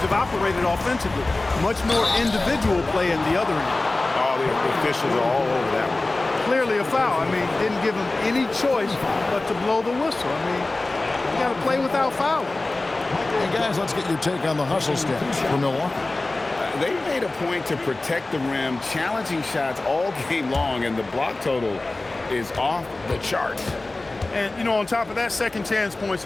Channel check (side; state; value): right; quieter; 3.0 dB